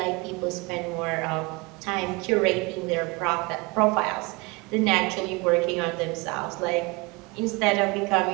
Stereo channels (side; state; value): left; quieter; 26.5 dB